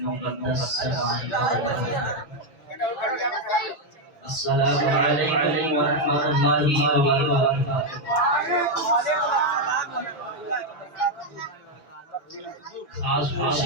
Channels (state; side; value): late; right; 5.9 ms